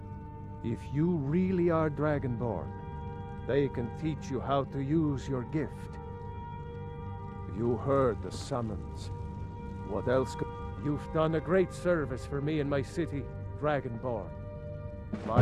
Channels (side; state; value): both; identical; correlation 1.00